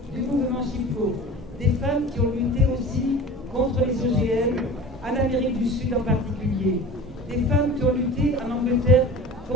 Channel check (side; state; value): both; normal; correlation 0.38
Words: du mouvement Chipko. Des femmes qui ont lutté aussi contre les OGM, en Amérique du Sud en particulier. Des femmes qui ont lutté en Angleterre